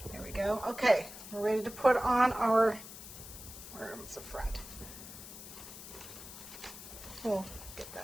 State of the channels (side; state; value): left; noise; hiss, 13 dB below the sound